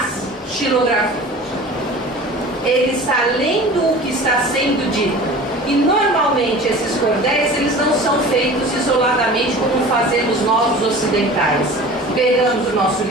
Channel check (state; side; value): normal; both; correlation 0.40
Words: xilografias. Ele está lendo o que está sendo dito. E normalmente esses cordéis eles não são feitos isoladamente como fazemos nós os ocidentais. Pegamos o nosso